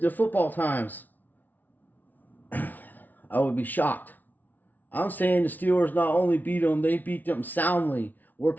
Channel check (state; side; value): late; right; 0.082 ms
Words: football times, I would be shocked. I'm saying the Steelers not only beat them, they beat them soundly. Where